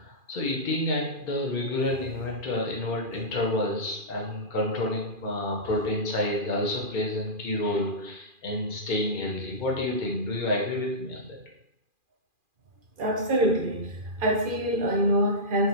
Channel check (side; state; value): left; late; 2.4 ms